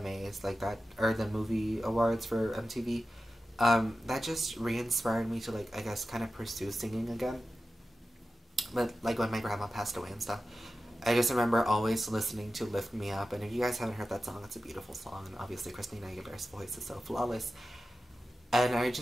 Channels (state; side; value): normal; both; correlation 0.93